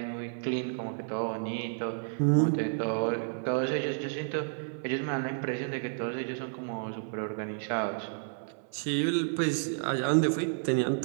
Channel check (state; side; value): silent; left; 57 dB below the other